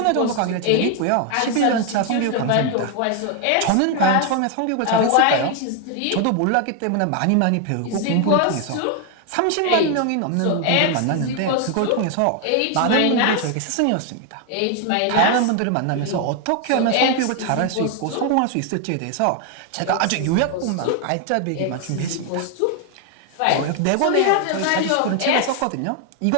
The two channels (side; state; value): both; different; correlation 0.01